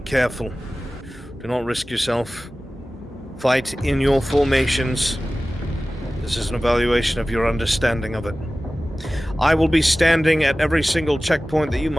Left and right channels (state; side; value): normal; both; correlation 0.97